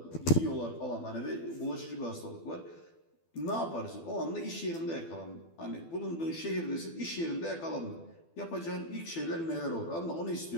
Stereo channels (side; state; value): right; late; 12 ms